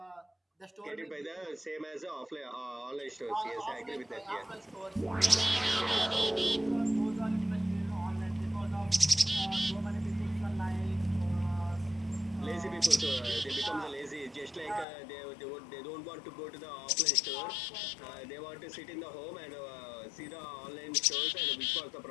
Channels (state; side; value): drops out; right; at 14.9 s